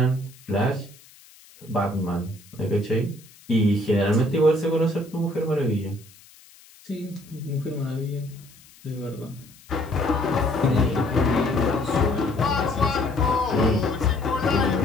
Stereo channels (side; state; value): left; noise; hiss, 25 dB below the sound